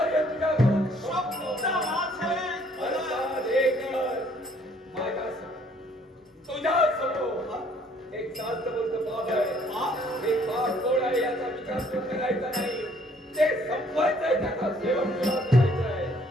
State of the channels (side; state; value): both; normal; correlation 0.62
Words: तुझ्याकडून शब्द माझे तुझ्या समोर एक शास्त्रबद्ध बाब आहे. एक बाप कोण आहे याचा विचार तू करायचा नाही. ते संपवायचं आहे, त्याचा सेवन करायचं आहे.